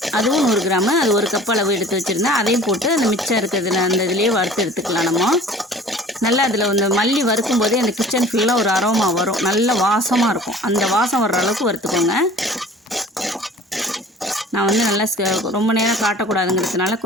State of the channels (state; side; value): normal; both; correlation 0.46